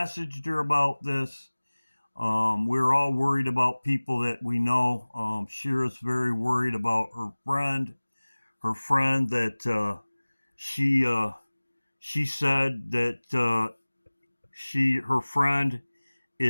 her about this. We're all worried about people that we know. Shira's very worried about her friend. Her friend that she said that her friend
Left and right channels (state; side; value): inverted; both; correlation -1.00